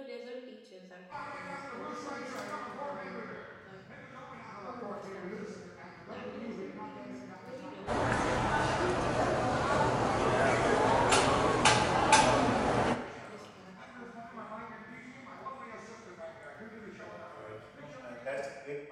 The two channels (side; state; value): both; identical; correlation 1.00